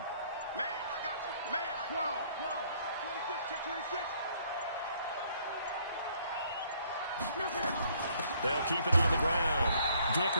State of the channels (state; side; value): inverted; both; correlation -0.64